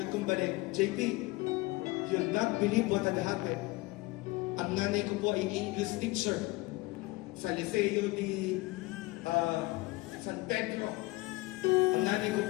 kong balik, JP, you'll not believe what had happened. Ang nanay ko po ay English teacher sa Liceo di San Pedro. Ang nanay ko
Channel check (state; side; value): quieter; right; 21.7 dB